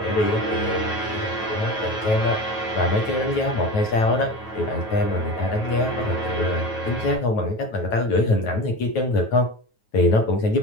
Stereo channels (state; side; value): late; right; 9.3 ms